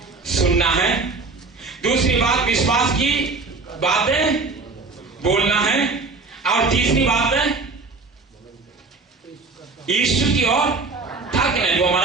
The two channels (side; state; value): left; quieter; 4.0 dB